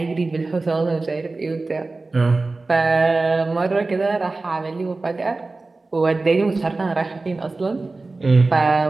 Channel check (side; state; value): left; quieter; 3.5 dB